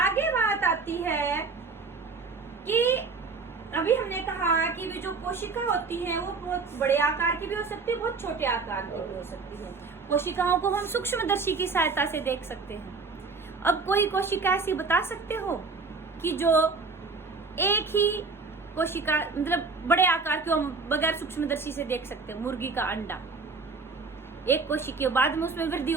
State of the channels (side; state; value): left; quieter; 4.3 dB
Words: बात आती है कि अभी हमने कहा कि वे जो कोशिका होती है वो बहुत बड़े आकार की भी हो सकती है, बहुत छोटे आकार की भी हो सकती है। कोशिकाओं को हम सूक्ष्मदर्शी की सहायता से देख सकते हैं। अब कोई कोशिका ऐसी बता सकते हो कि जो एक ही कोशिका, मतलब बड़े आकार की हम बगैर सूक्ष्मदर्शी से देख सकते हैं? मुर्गी का अंडा, एक कोशिका, बाद में उसमें वृद्धि